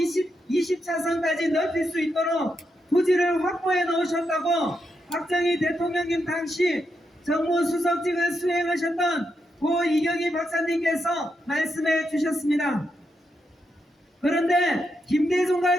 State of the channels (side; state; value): both; normal; correlation 0.83